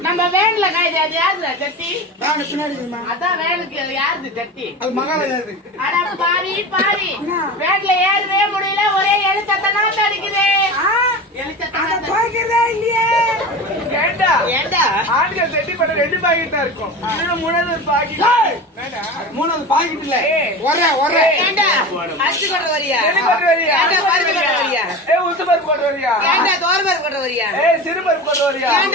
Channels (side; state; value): both; normal; correlation 0.30